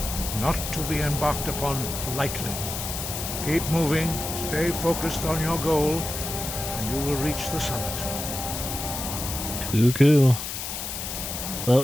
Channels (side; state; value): left; noise; hiss, 5 dB below the sound